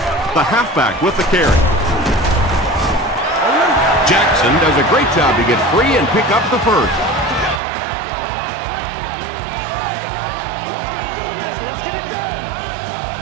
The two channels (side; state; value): left; drops out; at 7.6 s